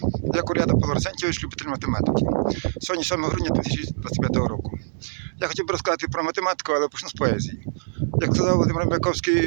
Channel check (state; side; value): silent; left; digital silence